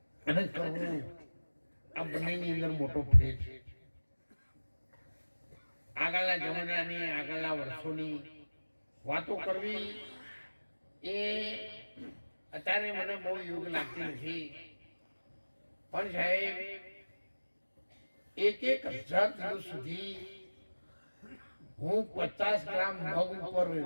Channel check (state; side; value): inverted; both; correlation -1.00